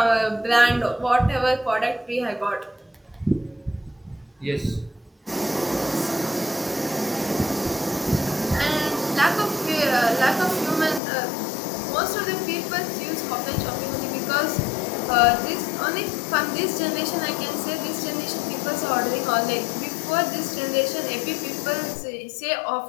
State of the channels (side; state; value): right; drops out; at 11.0 s